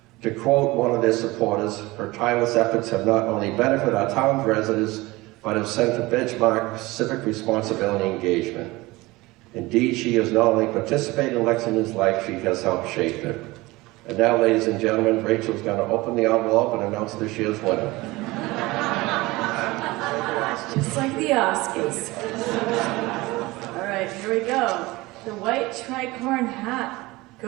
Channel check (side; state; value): left; quieter; 21.0 dB